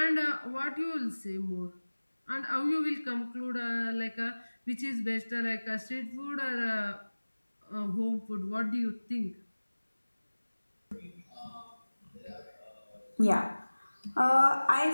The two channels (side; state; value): both; inverted; correlation -1.00